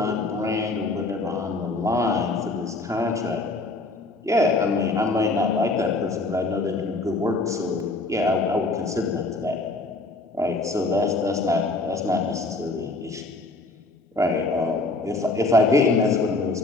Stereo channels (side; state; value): right; quieter; 3.1 dB